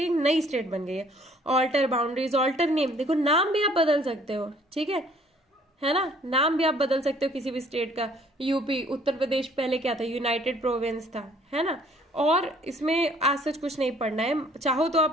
एक नई स्टेट बन गई है। ऑल्टर बाउंड्रीज, ऑल्टर नेम, देखो नाम भी आप बदल सकते हो, ठीक है ना, नाम भी आप बदल सकते हो किसी भी स्टेट का। यूपी, उत्तर प्रदेश पहले क्या था, यूनाइटेड प्रोविंस था, है ना। और इसमें आज सच कुछ नहीं पढ़ना है, चाहो तो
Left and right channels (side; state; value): both; normal; correlation 0.59